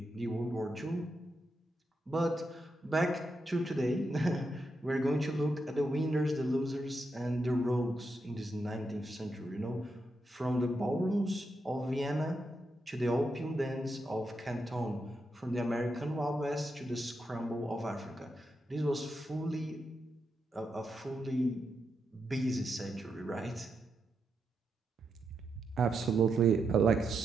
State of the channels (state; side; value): normal; both; correlation 0.84